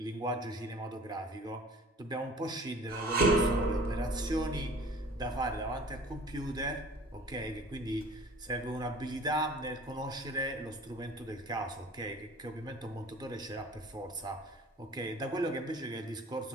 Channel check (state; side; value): normal; both; correlation 0.46